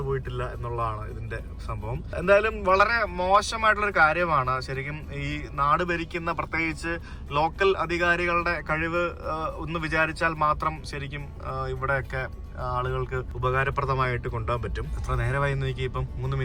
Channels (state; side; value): identical; both; correlation 1.00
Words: പോയിട്ടില്ല എന്നുള്ളതാണ് ഇതിന്റെ സംഭവം. എന്തായാലും വളരെ മോശമായിട്ടുള്ളൊരു കാര്യമാണ് ശരിക്കും. ഈ നാട് ഭരിക്കുന്ന പ്രത്യേകിച്ച് ലോക്കൽ അധികാരികളുടെ കഴിവ് ഒന്ന് വിചാരിച്ചാൽ മാത്രം ശരിക്കും ഇവിടെയൊക്കെ ആളുകൾക്ക് ഉപകാരപ്രദമായിട്ട് കൊണ്ടുപോകാൻ പറ്റും. എത്ര നേരമായി നോക്കി, ഇപ്പം 3